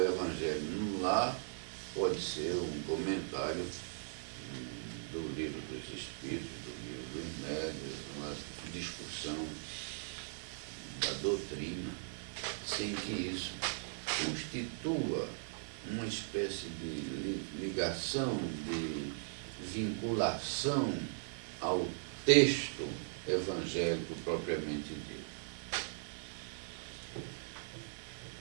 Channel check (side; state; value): left; silent; digital silence